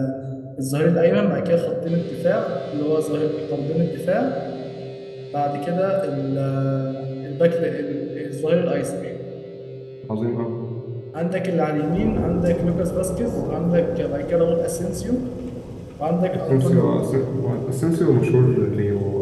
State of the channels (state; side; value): identical; both; correlation 1.00